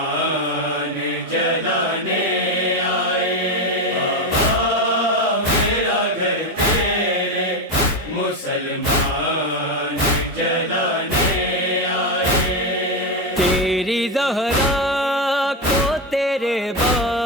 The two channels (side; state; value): both; normal; correlation 0.11